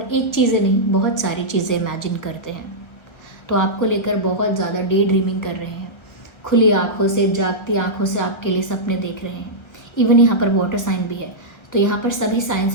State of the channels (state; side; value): late; right; 1.4 ms